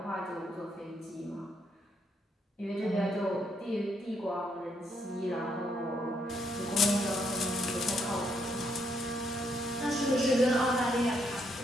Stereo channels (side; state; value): both; normal; correlation 0.74